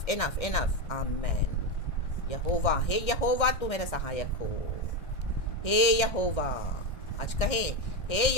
enough, enough, आमेन। यहोवा, हे यहोवा तू मेरा सहायक हो। हे यहोवा, आज कहे हे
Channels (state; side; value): late; right; 1.6 ms